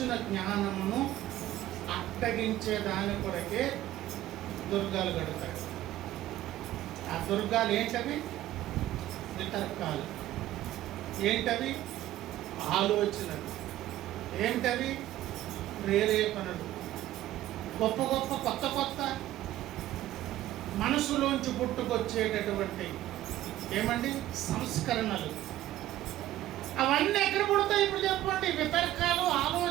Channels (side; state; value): left; quieter; 14.2 dB